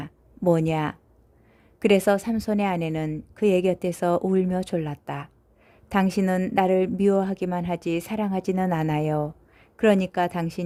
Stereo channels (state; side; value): identical; both; correlation 1.00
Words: 뭐냐? 그래서 삼손의 아내는 그의 곁에서 울며 졸랐다. 당신은 나를 미워하기만 하지 사랑하지는 않아요. 그러니까